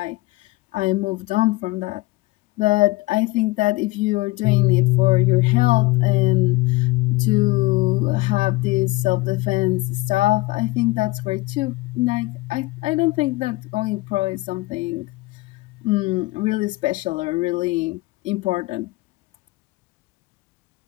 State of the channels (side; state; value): right; quieter; 20.7 dB